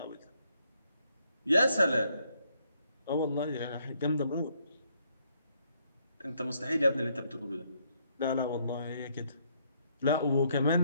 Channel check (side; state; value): both; inverted; correlation -0.71